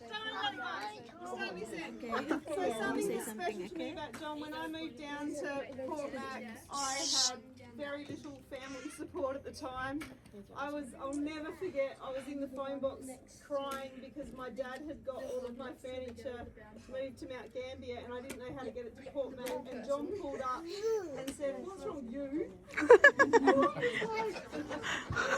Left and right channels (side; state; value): both; identical; correlation 1.00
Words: So something that's special to me about John, when I moved down to Port Mac, I had very little family support at the time. I'll never forget, I was in the phone box crying because my dad had got all of my furniture moved to Mount Gambier and I didn't know how to get it to Port Mac, and John pulled up and said, "What's wrong with you?"